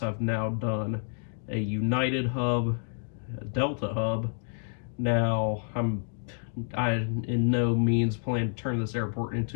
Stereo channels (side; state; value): right; silent; 59 dB below the other